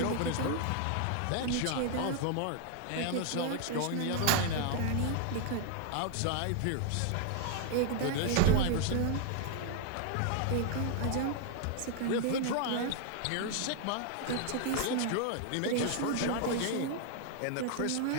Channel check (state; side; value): different; both; correlation 0.00